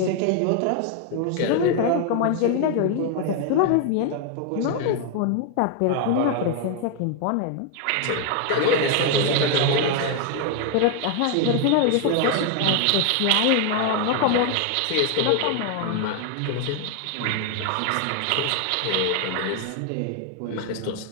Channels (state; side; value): different; both; correlation 0.00